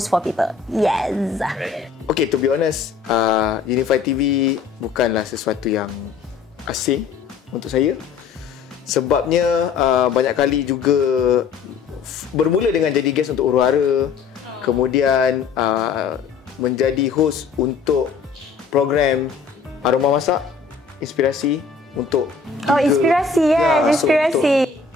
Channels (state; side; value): quieter; right; 5.5 dB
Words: for people. Yes. Okay, to be honest, Unify TV bukanlah sesuatu yang asing untuk saya. Sebabnya banyak kali juga bermula dengan jadi guest untuk Huru-Hara, kemudian menjadi host untuk program Aroma Masak, Inspirasi untuk Inspirasi, yes, Inspirasi.